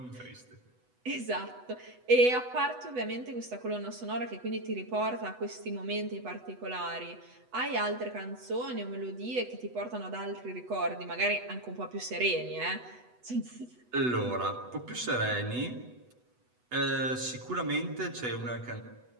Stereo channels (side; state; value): left; late; 8.1 ms